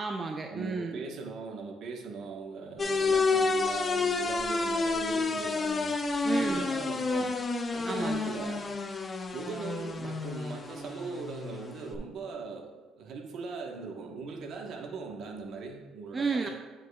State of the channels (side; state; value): both; normal; correlation 0.78